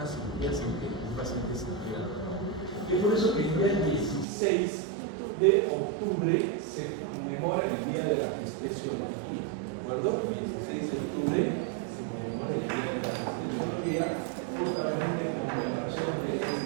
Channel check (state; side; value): drops out; left; at 4.2 s